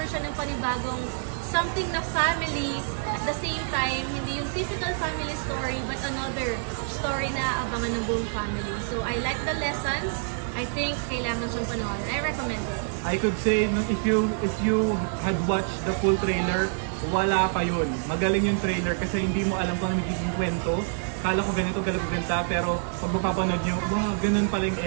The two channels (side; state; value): left; silent; 60 dB below the other